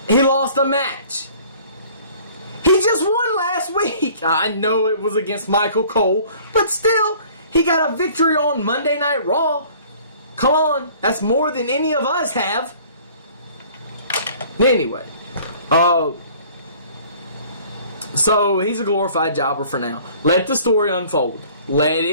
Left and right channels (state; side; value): inverted; both; correlation -0.52